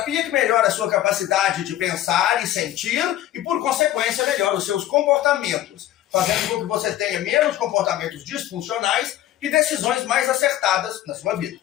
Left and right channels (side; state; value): right; quieter; 13.3 dB